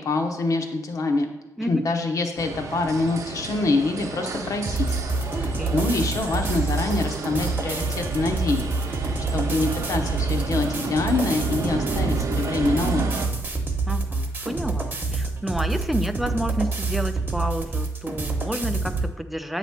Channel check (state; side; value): normal; both; correlation 0.72